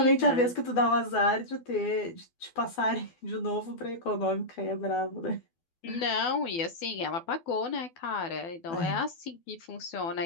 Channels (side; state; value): right; late; 12 ms